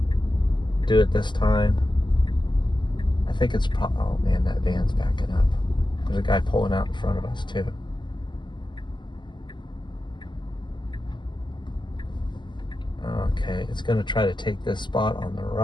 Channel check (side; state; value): right; late; 0.22 ms